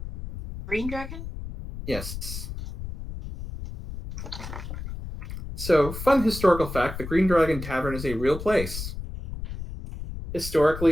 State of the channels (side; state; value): left; noise; rumble, 8 dB below the sound